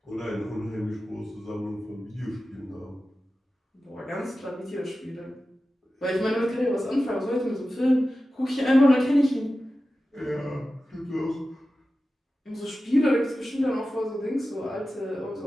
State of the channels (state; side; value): normal; both; correlation 0.94